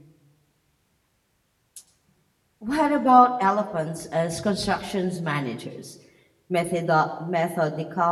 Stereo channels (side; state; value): both; identical; correlation 1.00